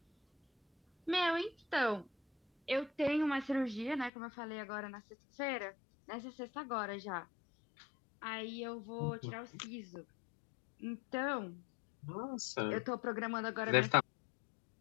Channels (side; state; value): right; drops out; at 4.1 s